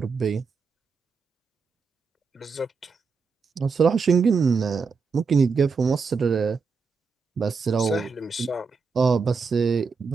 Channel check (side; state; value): left; quieter; 5.0 dB